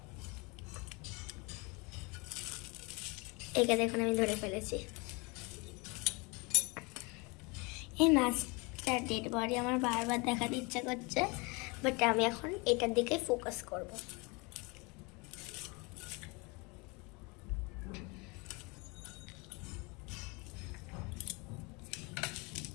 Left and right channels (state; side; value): quieter; right; 28.3 dB